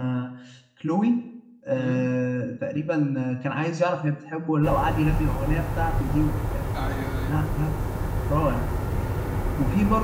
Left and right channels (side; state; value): both; identical; correlation 1.00